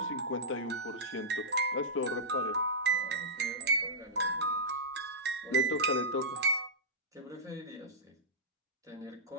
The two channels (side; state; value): both; normal; correlation -0.12